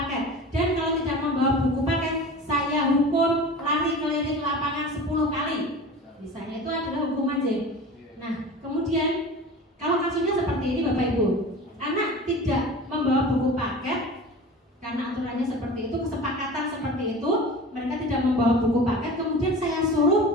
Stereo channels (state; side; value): normal; both; correlation 0.36